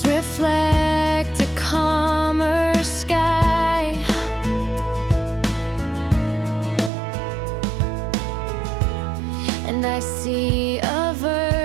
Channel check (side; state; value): left; drops out; at 6.9 s